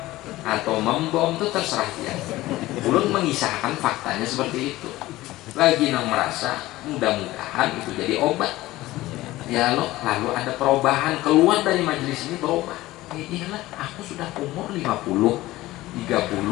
atau membom itu terserah dia. Ulun mengisahkan faktanya seperti itu. Lagi nang merasa mudah-mudahan itu jadi obat. Ya lo, lalu ada perubahan keluar dari majelis ini berubah. Iyalah, aku sudah umur 50, 30,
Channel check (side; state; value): right; quieter; 17.4 dB